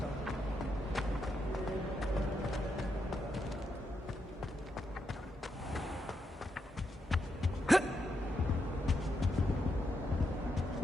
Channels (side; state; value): both; normal; correlation 0.82